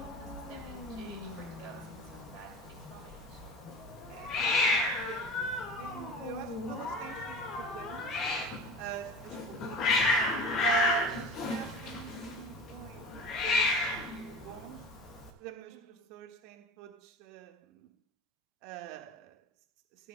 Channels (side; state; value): both; normal; correlation 0.35